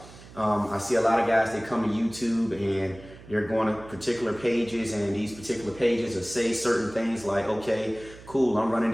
I see a lot of guys, they come to YouTube and they're going to particular pages, and these particular pages will say certain things like, okay, cool, I'm running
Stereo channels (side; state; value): right; noise; hum, 19 dB below the sound